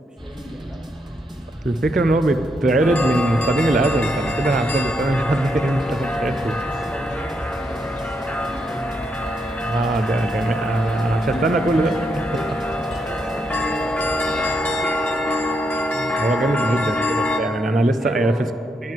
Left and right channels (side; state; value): both; normal; correlation 0.79